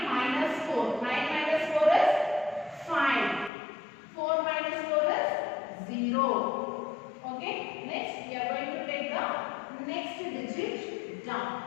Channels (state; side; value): drops out; right; at 3.5 s